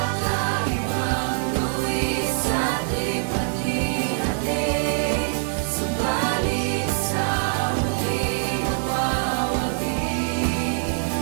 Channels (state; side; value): silent; left; digital silence